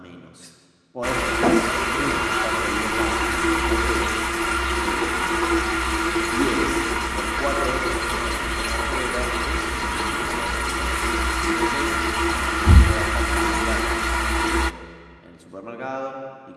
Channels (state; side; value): identical; both; correlation 1.00